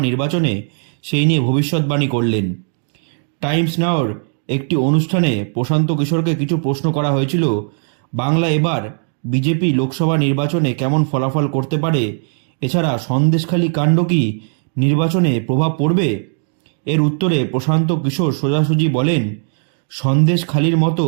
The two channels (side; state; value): left; silent; 57 dB below the other